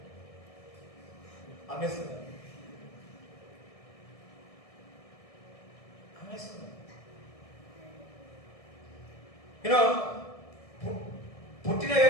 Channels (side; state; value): right; late; 1.6 ms